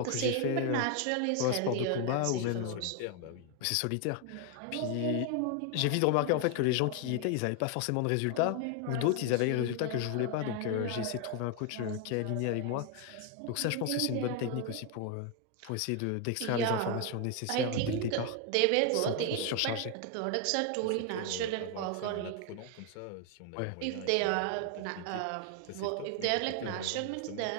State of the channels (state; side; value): different; both; correlation 0.01